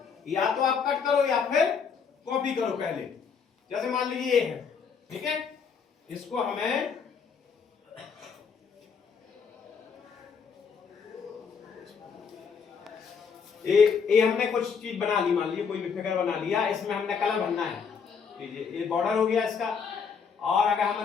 या तो आप कट करो या फिर कॉपी करो। पहले जैसे मान लीजिए ये है, ठीक है, इसको हमें ये हमने कुछ चीज बना ली, मान लीजिए कोई भी फिगर बना लिया, इसमें हमने कलर भरना है। ये बॉर्डर हो गया इसका। और अगर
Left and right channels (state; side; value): quieter; right; 6.2 dB